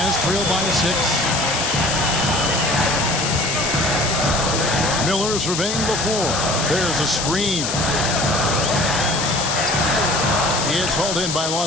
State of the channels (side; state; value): left; noise; hiss, 2 dB below the sound